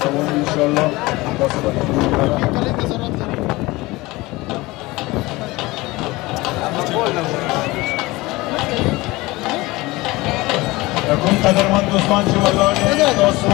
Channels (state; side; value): quieter; right; 21.1 dB